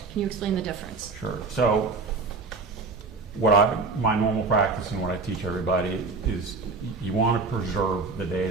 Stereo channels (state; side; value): quieter; left; 4.0 dB